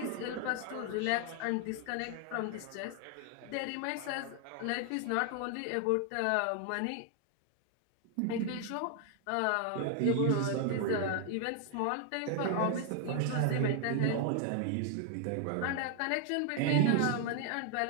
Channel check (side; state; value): both; different; correlation 0.00